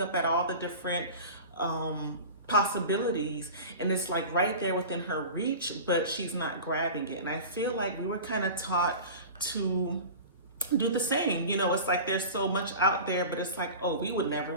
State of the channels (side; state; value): both; inverted; correlation -0.34